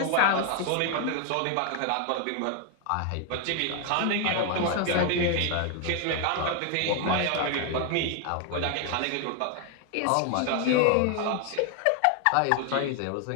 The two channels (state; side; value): different; both; correlation 0.00